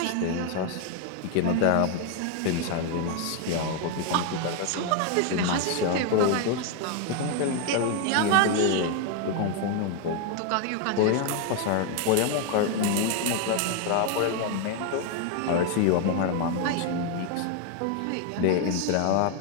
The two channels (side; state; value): both; different; correlation 0.01